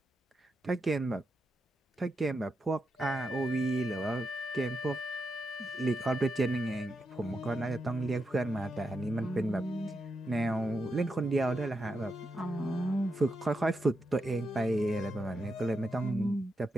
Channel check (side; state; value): both; normal; correlation 0.85